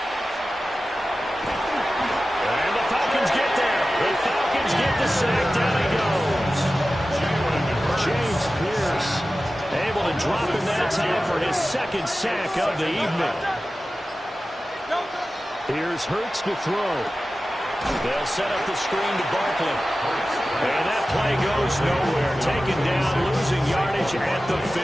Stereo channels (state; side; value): normal; both; correlation 0.95